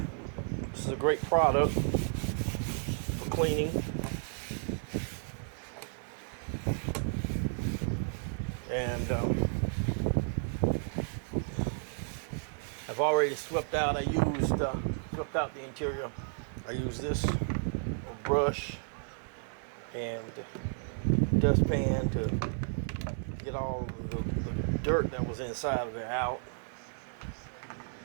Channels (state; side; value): silent; left; digital silence